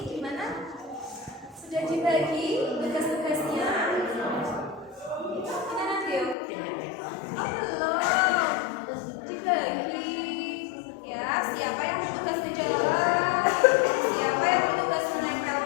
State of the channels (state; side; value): drops out; right; at 6.4 s